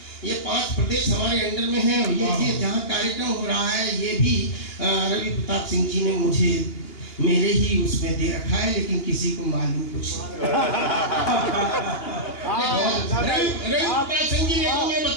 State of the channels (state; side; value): late; right; 2.8 ms